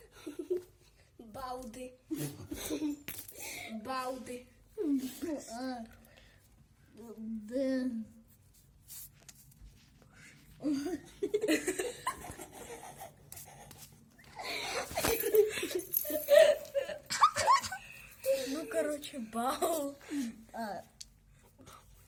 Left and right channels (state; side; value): identical; both; correlation 1.00